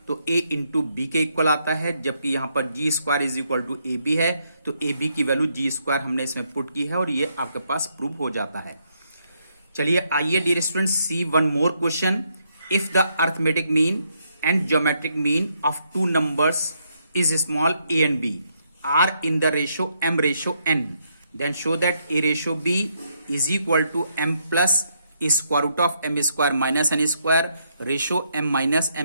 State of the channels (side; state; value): both; inverted; correlation -0.76